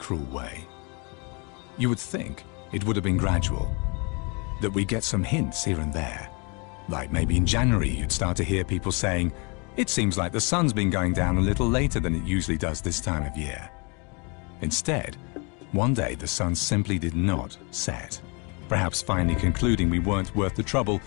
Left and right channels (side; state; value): right; quieter; 32.2 dB